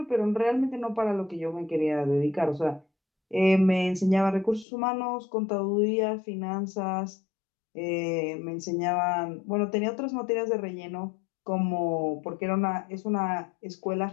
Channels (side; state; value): right; drops out; at 4.7 s